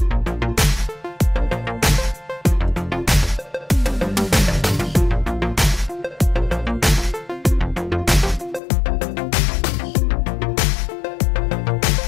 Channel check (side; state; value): right; drops out; at 8.6 s